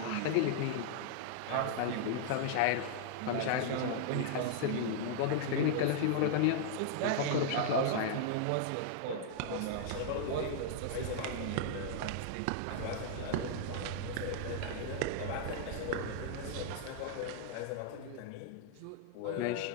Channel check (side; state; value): both; different; correlation -0.01